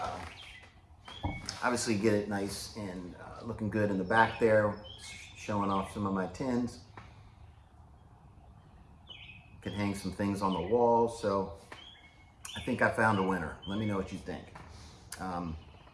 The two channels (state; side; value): identical; both; correlation 1.00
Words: obviously get it nice and looking good in the back there, showing off some of my tins. Could hang some things on the wall. So I think I found a winner. Let me know what you think.